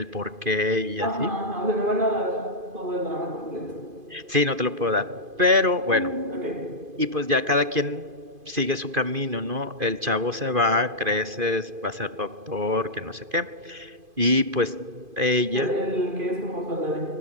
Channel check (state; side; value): late; left; 2.5 ms